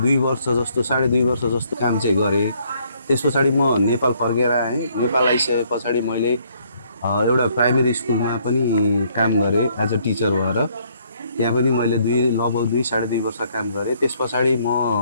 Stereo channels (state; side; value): inverted; both; correlation -0.67